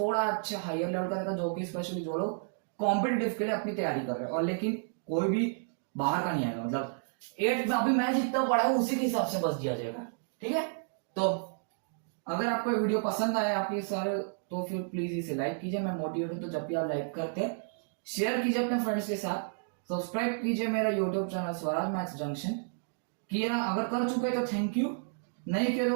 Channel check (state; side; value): silent; left; digital silence